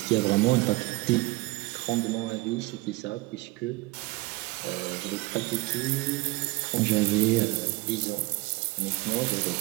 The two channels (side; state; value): left; quieter; 21.3 dB